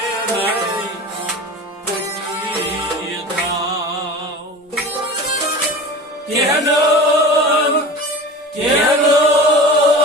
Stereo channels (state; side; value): normal; both; correlation 0.34